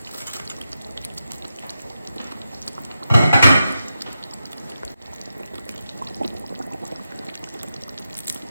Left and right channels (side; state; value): both; inverted; correlation -0.88